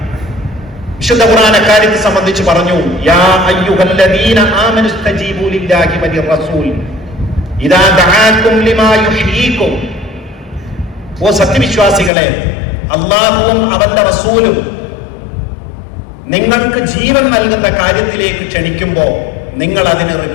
വിശുദ്ധ ഖുർആൻ അക്കാര്യത്തെ സംബന്ധിച്ച് പറഞ്ഞു, യാ അയ്യുഹല്ലദീന ആമനു സ്തജീബു ലില്ലാഹി വലിർറസൂൽ ഇദാ ദഅാകും ലിമാ യുഹ്യീകും. ഓ സത്യവിശ്വാസികളെ, അല്ലാഹുവും അവന്റെ റസൂലും നിങ്ങൾക്ക് ജീവൻ നൽകുന്ന കാര്യത്തിലേക്ക് ക്ഷണിക്കുമ്പോൾ നിങ്ങൾ അതിന്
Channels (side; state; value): right; drops out; at 12.1 s